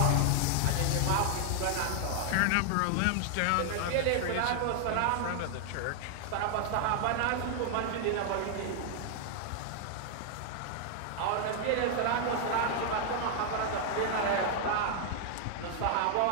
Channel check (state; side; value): different; both; correlation 0.00